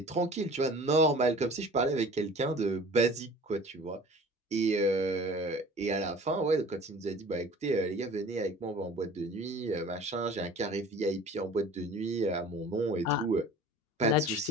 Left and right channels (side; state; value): both; normal; correlation 0.44